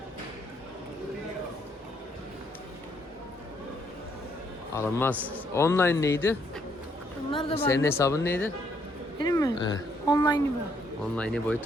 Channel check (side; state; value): both; normal; correlation 0.71